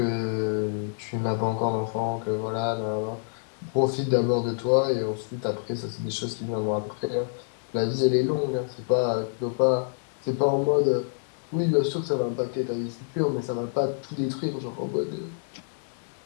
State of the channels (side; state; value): right; silent; digital silence